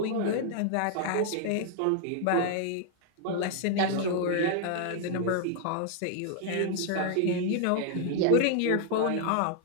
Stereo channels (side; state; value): both; different; correlation 0.00